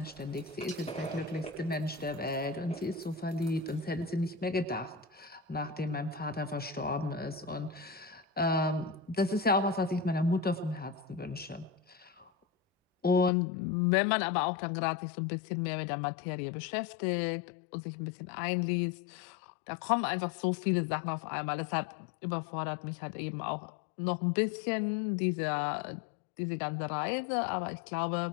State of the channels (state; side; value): drops out; right; at 13.3 s